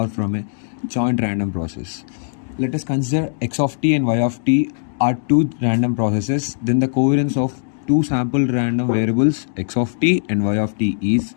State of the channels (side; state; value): right; silent; digital silence